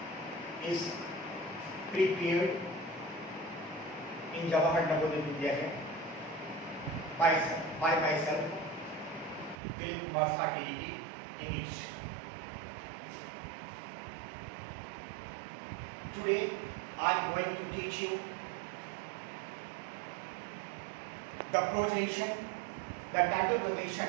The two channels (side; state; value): left; drops out; at 9.6 s